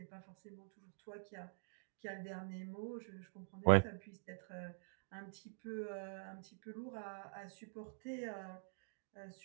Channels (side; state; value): left; silent; digital silence